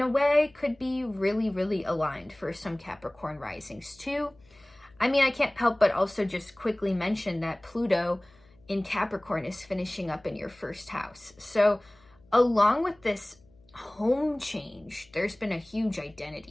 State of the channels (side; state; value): left; noise; hum, 30 dB below the sound